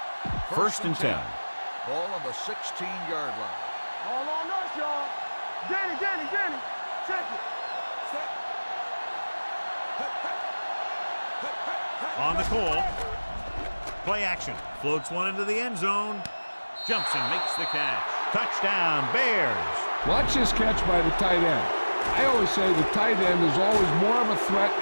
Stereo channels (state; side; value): inverted; both; correlation -1.00